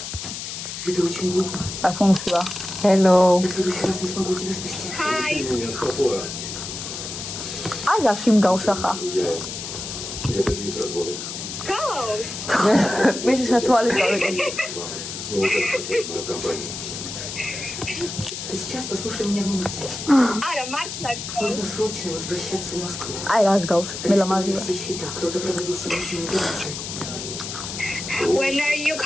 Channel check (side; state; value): left; noise; hiss, 7 dB below the sound